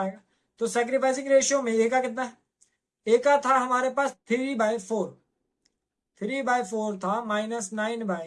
तो सैक्रिफाइसिंग रेशियो में ए का कितना है, ए का था हमारे पास 3/4, 3/4 था, माइनस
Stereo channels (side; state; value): both; identical; correlation 1.00